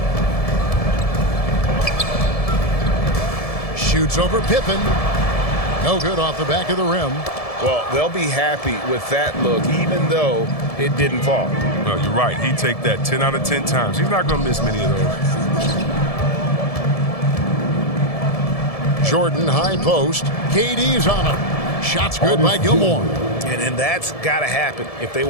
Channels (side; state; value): right; late; 1.7 ms